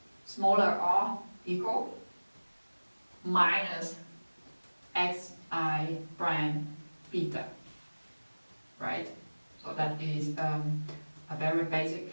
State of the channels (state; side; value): inverted; both; correlation -1.00